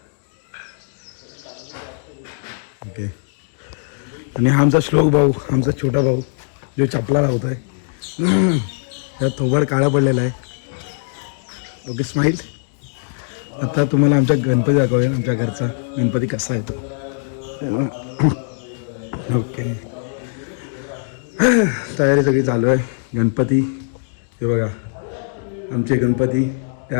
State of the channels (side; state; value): right; silent; digital silence